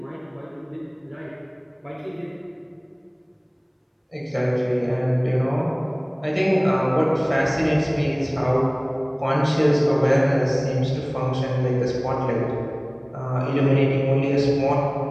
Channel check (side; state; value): both; identical; correlation 1.00